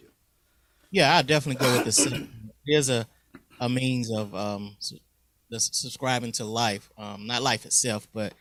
Yeah, I definitely go with the second. There's a means of subscribing to life, not life itself, but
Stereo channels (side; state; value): both; identical; correlation 1.00